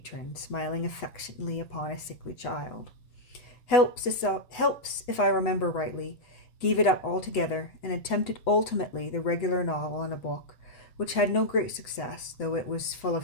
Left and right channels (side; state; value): right; late; 8.1 ms